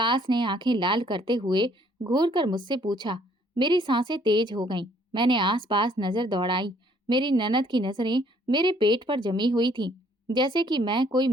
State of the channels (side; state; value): both; normal; correlation 0.63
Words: ने आंखें लाल करते हुए घूर कर मुझसे पूछा। मेरी सांसें तेज हो गईं। मैंने आसपास नजर दौड़ाई। मेरी ननद की नजरें मेरे पेट पर जमी हुई थीं, जैसे कि मैं कोई